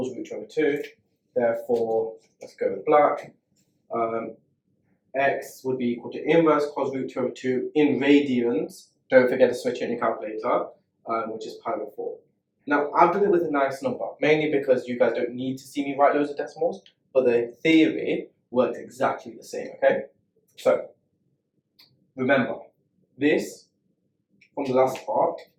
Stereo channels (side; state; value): both; identical; correlation 1.00